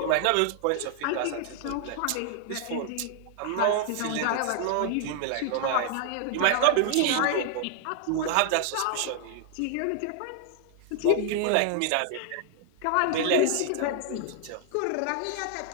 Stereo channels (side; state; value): both; different; correlation 0.00